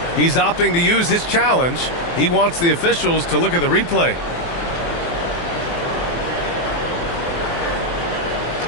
He's opting to use his challenge. He wants the officials to look at the replay.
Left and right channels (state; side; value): late; right; 23 ms